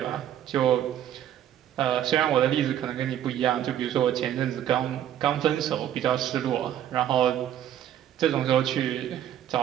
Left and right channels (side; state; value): left; quieter; 11.0 dB